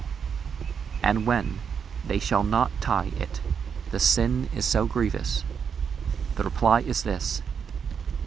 and when they shall not tie it, the sin is so grievous? The reply is this:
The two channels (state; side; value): quieter; left; 6.9 dB